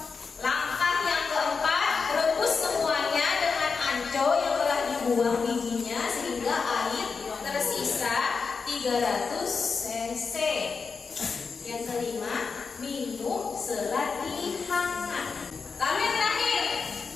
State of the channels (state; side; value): quieter; right; 5.1 dB